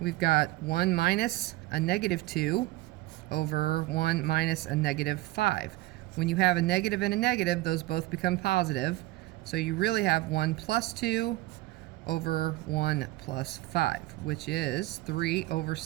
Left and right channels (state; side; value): quieter; left; 18.8 dB